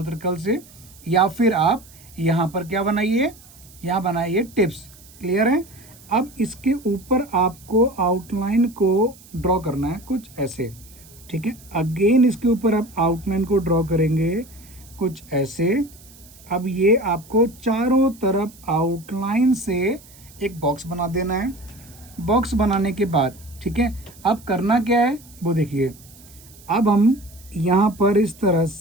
सर्कल से, या फिर आप यहाँ पर क्या बनाइए, यहाँ बनाइए टिप्स। क्लियर है। अब इसके ऊपर आपको आउटलाइन को ड्रॉ करना है कुछ ऐसे, ठीक है। अगेन इसके ऊपर आप आउटलाइन को ड्रॉ करेंगे कुछ ऐसे। अब ये आपको चारों तरफ आउटलाइन से एक बॉक्स बना देना है। बॉक्स बनाने के बाद ठीक है, अब करना क्या है वो देखिए। अब हम यहाँ पर इस तरह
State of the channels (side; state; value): right; noise; hiss, 23 dB below the sound